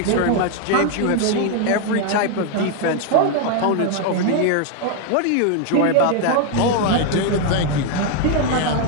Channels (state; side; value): different; both; correlation 0.01